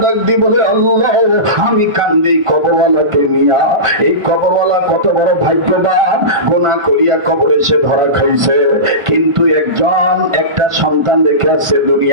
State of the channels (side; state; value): left; late; 1.4 ms